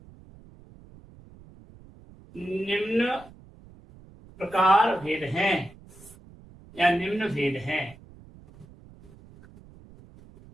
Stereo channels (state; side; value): noise; right; rumble, 22 dB below the sound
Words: निम्न प्रकार भेद हैं या निम्न भेद हैं।